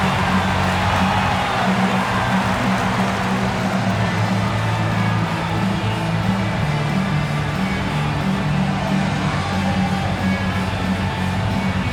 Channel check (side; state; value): both; identical; correlation 1.00